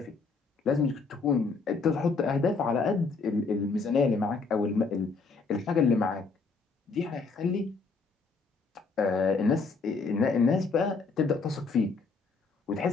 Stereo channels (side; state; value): right; quieter; 4.4 dB